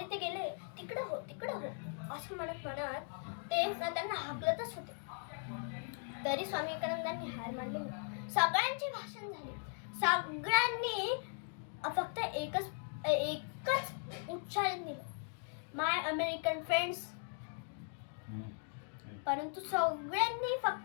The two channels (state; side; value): silent; right; 52 dB below the other